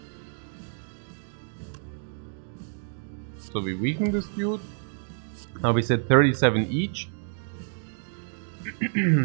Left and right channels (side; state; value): left; silent; digital silence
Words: So we weaken this dude. Now we said 37 each.